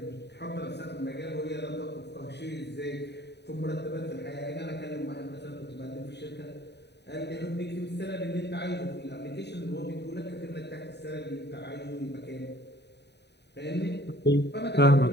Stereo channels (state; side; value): late; right; 0.50 ms